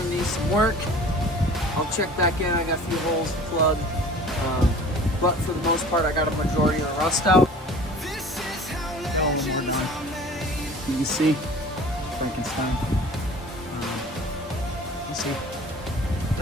need some work. I'll check back in. I got a few holes to plug. But for the most part, I got a majority of the rust out. Oh, we're done. You can see Frankenstein. You see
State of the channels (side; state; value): both; normal; correlation 0.44